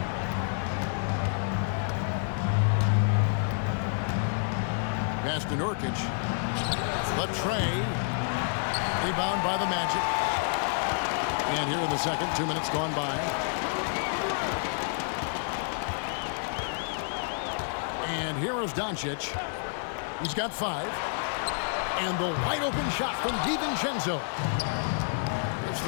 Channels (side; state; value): right; silent; digital silence